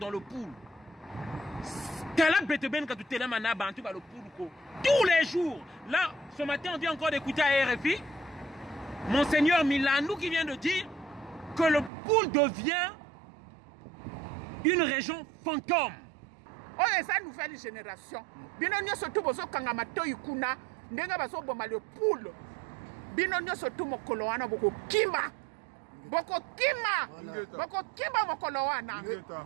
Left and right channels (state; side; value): drops out; left; at 11.9 s